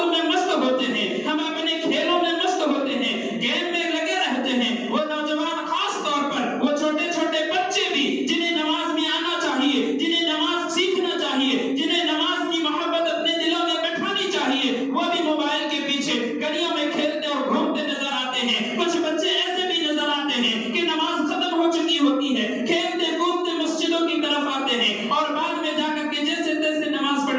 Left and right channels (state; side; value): identical; both; correlation 1.00